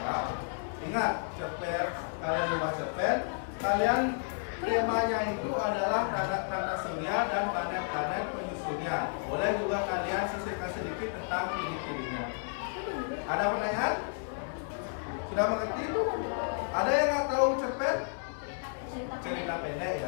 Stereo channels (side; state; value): right; silent; 56 dB below the other